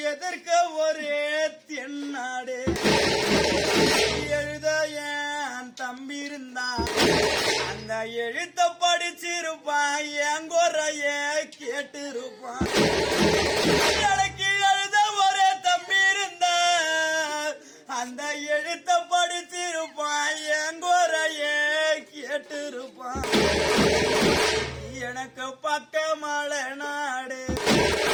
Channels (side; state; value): both; identical; correlation 1.00